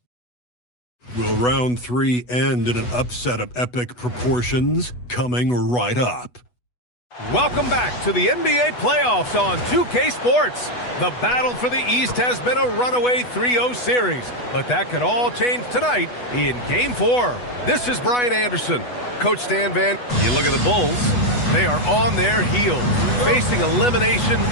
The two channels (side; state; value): right; late; 8.1 ms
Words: Will round 3 end in an upset of epic proportions? Coming right up. Welcome back to the NBA playoffs on 2K Sports. The battle for the East has been a runaway 3-0 series, but that could all change tonight in Game 4. This is Brian Anderson. Coach Stan Van, you look at the Bulls, they are on their heels, facing elimination